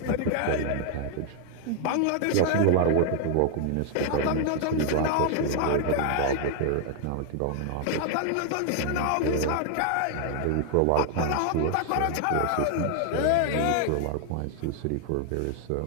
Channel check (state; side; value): different; both; correlation 0.00